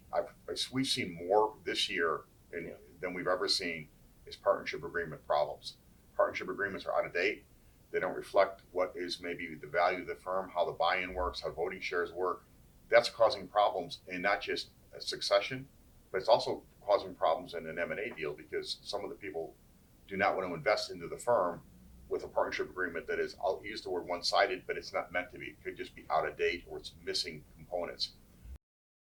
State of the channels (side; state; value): both; identical; correlation 1.00